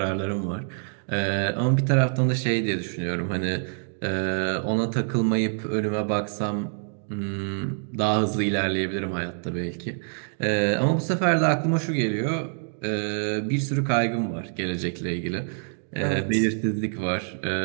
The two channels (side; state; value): left; silent; digital silence